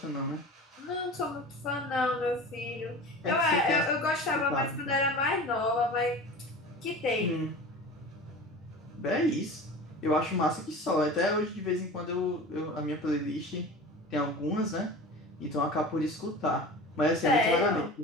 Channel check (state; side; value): normal; both; correlation 0.35